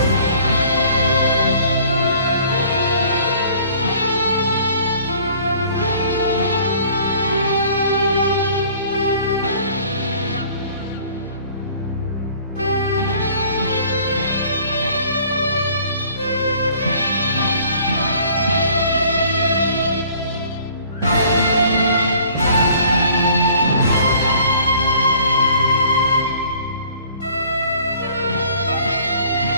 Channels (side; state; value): both; inverted; correlation -0.53